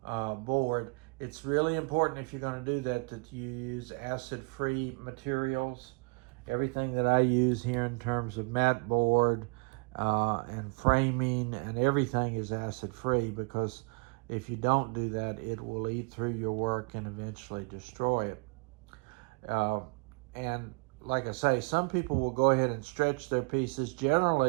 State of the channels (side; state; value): left; quieter; 32.5 dB